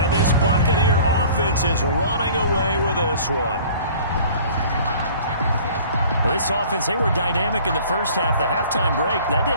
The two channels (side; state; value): both; inverted; correlation -0.49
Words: this Buccaneer offense is running away with this one. This offense, they were dynamic in the first half. The halftime break, that